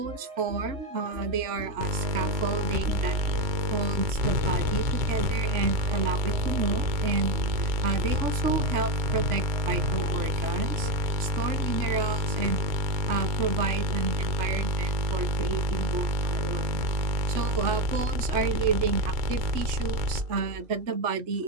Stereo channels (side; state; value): left; late; 3.0 ms